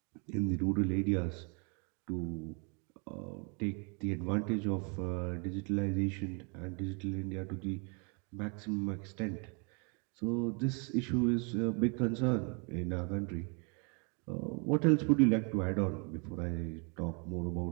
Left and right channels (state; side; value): quieter; left; 35.1 dB